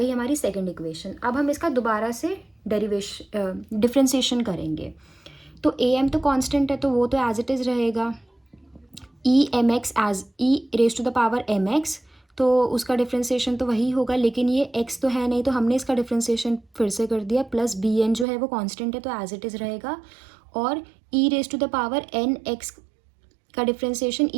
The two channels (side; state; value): left; drops out; at 18.2 s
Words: हमारी सेकेंड इक्वेशन। अब हम इसका दोबारा से डिफ्रेंसिएशन करेंगे, तो ए एम तो कांस्टेंट है तो वो तो एज इट इज़ रहेगा, e m x as e raise to the power m x, तो उसका डिफ्रेंसिएशन तो वही होगा, लेकिन ये एक्स तो है नहीं तो हमने इसका डिफ्रेंसिएशन फिर से कर दिया, प्लस बी एन जो है वो कांस्टेंट है तो एज इट इज़ रहेगा, और e raise to the power n x का differentiation